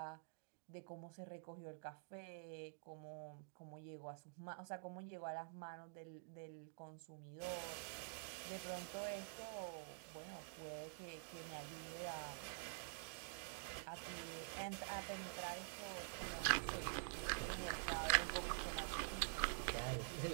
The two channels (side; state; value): left; silent; digital silence